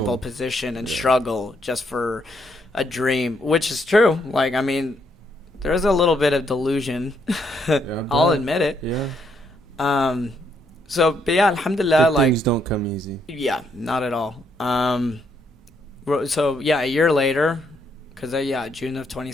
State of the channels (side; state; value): both; normal; correlation 0.74